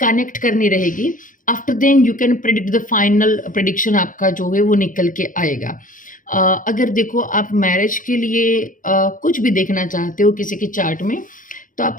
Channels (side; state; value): right; late; 0.39 ms